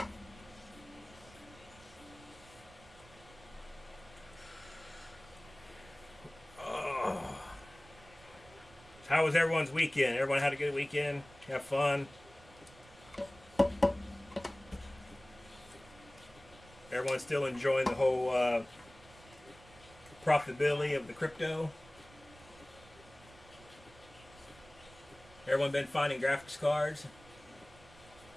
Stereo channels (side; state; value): right; noise; rumble, 23 dB below the sound